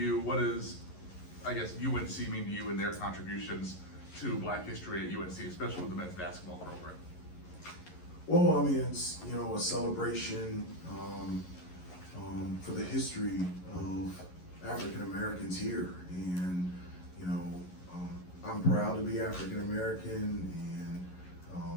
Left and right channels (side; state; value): right; late; 11 ms